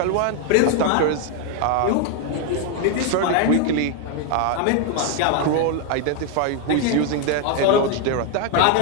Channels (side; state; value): both; different; correlation 0.01